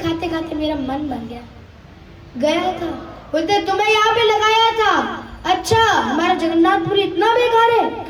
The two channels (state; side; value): identical; both; correlation 1.00